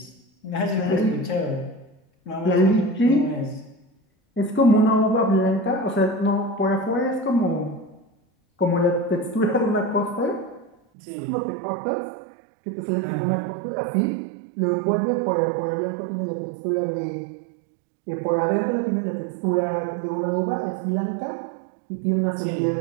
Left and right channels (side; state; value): left; drops out; at 10.8 s